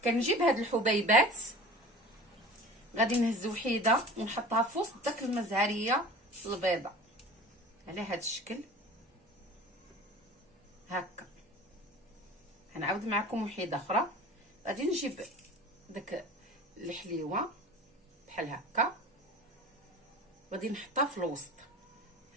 كنجيب هاد الحبيبات غادي نهز وحيده ونحطها في وسط داك المزهريه البيضاء على هاد الشكل هكا. غنعاود معكم وحيده اخرى. غادي نجيب داك الحليوه بحال هكا غادي نحطها في الوسط.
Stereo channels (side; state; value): both; normal; correlation 0.39